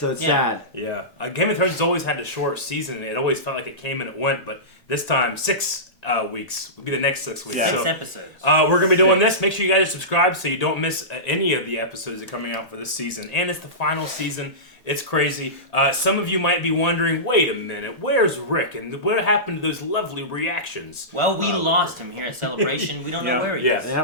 it's sad. Yeah. Game of Thrones has always had a short season. It always felt like it came and it went, but this time, 6 weeks will be the next 6 weeks. Yeah. So, 6 episodes. we're going to be doing this. Make sure you guys subscribe so you don't miss any of the episodes that are coming out for this season. And it's the final season. It's crazy. Some of you might be wondering, wait a minute, where's Rick? And what happened to those lovely reactions? Well, we lost him here at Celebration. We don't know where he is.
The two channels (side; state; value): both; normal; correlation -0.19